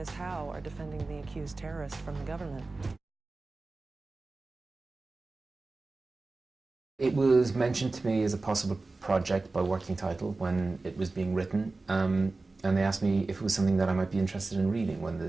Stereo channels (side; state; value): left; quieter; 3.5 dB